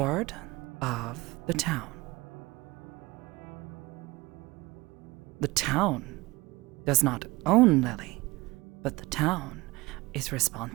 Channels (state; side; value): quieter; left; 21.7 dB